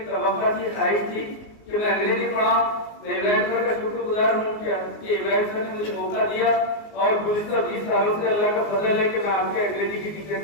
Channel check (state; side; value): late; right; 19 ms